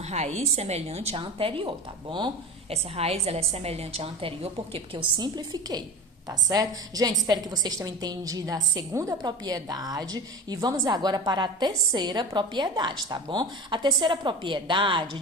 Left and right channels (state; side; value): normal; both; correlation 0.31